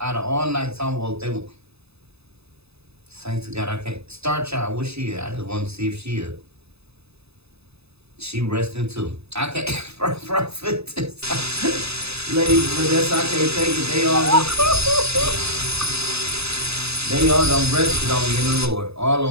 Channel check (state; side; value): late; left; 0.79 ms